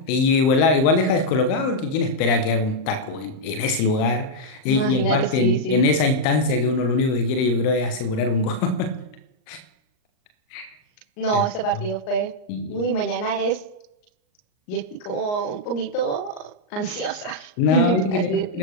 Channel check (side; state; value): right; late; 38 ms